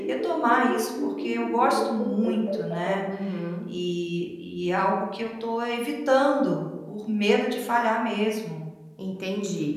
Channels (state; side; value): identical; both; correlation 1.00